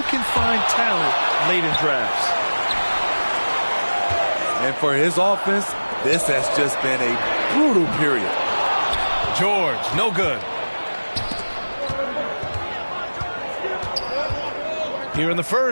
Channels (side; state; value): both; inverted; correlation -1.00